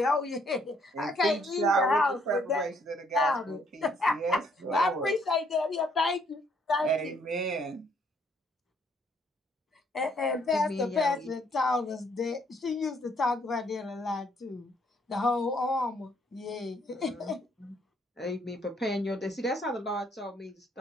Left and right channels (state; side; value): normal; both; correlation 0.68